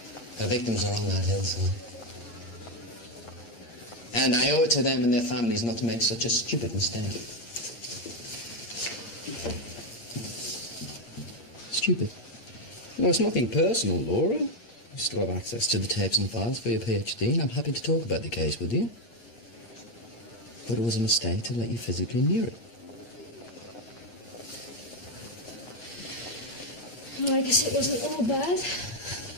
Her victims are on that hillside. And I owe it to them and their families not to make such a stupid mistake. Stupid. No, it's nothing personal, Laura. You still have access to the tapes and files for your PhD, and I'm happy to talk about the case with you. But it was a mistake to let you physically near it. Well, I guess it wasn't all bad.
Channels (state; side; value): late; right; 8.6 ms